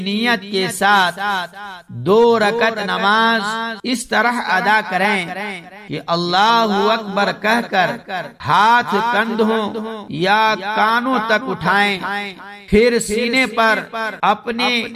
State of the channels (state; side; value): identical; both; correlation 1.00